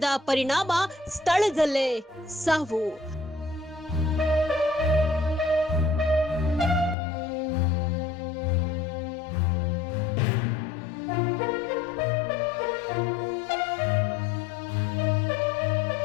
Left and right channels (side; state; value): right; drops out; at 7.0 s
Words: ಪರಿಣಾಮ ಸ್ಥಳದಲ್ಲೇ ಸಾವು.